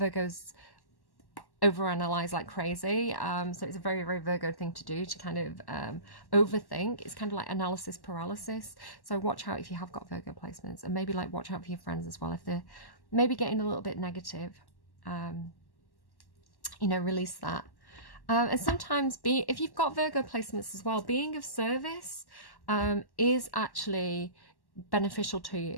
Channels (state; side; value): late; right; 1.1 ms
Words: overanalyze like crazy, so it's a very, very Virgo thing to do, to kind of overthink. It's kind of like analysis paralysis. So watch out if you have got Virgo placements, and maybe like watch out for your friends as well if they're maybe getting a little bit negative. You know, release that. And sometimes if you've got Virgo placements as well, being of service is actually beneficial to